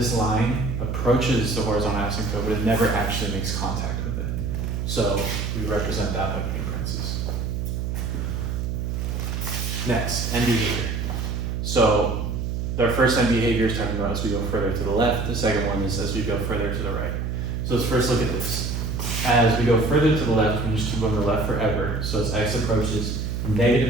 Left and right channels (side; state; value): right; noise; hum, 2 dB below the sound